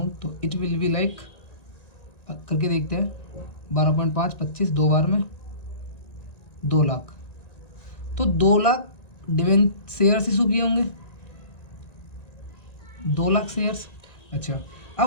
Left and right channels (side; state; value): right; late; 1.9 ms